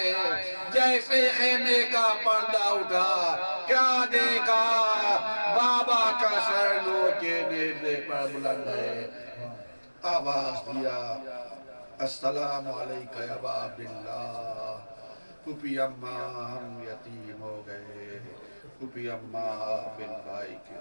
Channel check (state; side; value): inverted; both; correlation -1.00